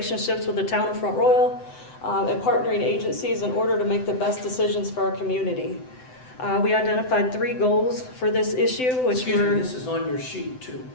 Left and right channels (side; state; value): right; late; 7.9 ms